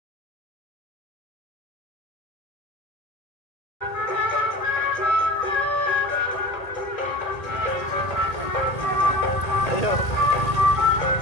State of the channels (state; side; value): late; right; 1.8 ms